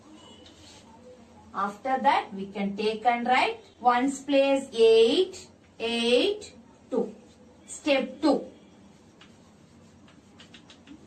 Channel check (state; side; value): identical; both; correlation 1.00